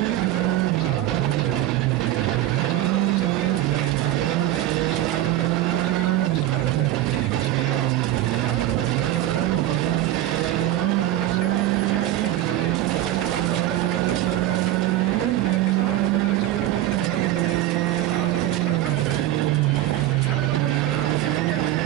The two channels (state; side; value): quieter; left; 14.0 dB